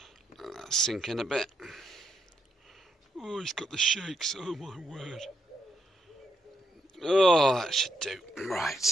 That's sinking a bit. Oh, he's got the shakes. Oh my word. Oh, that should do.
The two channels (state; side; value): normal; both; correlation 0.78